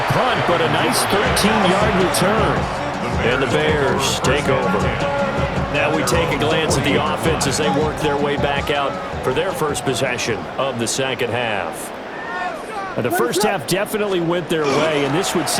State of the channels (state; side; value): identical; both; correlation 1.00